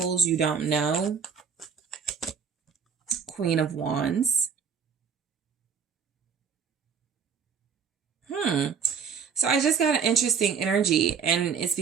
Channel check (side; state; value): left; quieter; 6.6 dB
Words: you don't know. Queen of Wands. So I just got an interesting energy, and it's